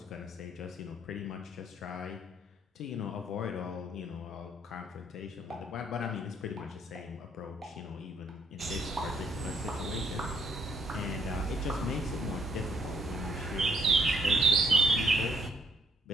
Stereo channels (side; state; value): both; normal; correlation 0.69